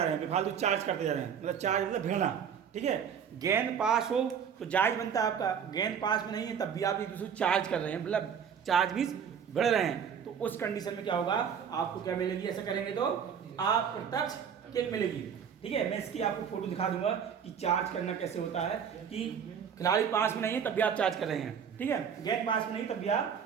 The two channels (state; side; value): quieter; left; 7.6 dB